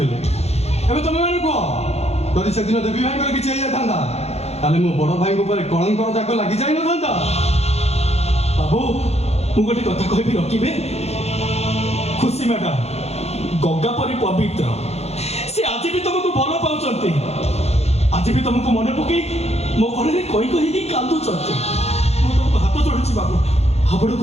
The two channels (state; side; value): late; right; 0.31 ms